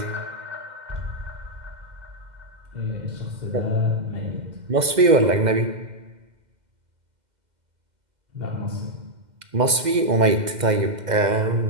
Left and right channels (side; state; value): left; late; 2.1 ms